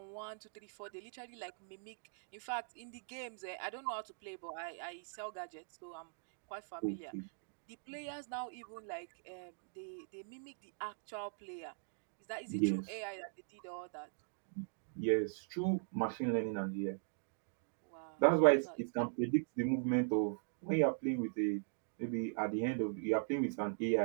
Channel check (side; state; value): left; silent; digital silence